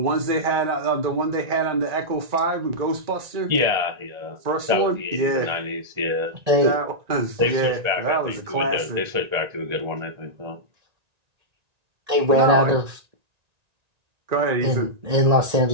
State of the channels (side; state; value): left; late; 1.9 ms